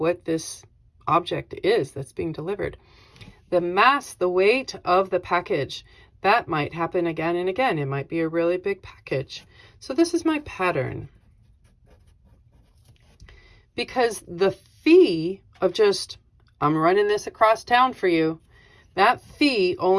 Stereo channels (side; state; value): both; identical; correlation 1.00